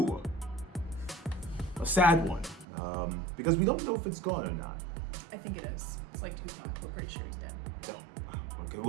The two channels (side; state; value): left; drops out; at 2.7 s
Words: a sad one because we don't know if it's gone or not. I think it is. It's like Tupac. We're pretty sure he's dead. Oh, okay.